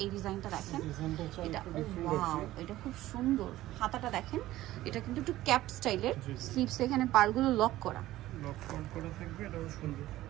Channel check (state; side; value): quieter; left; 15.6 dB